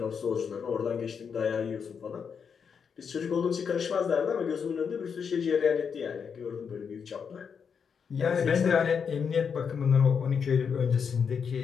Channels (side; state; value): right; quieter; 6.6 dB